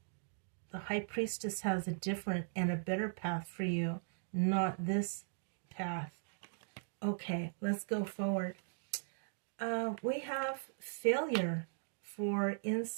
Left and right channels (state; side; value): silent; left; digital silence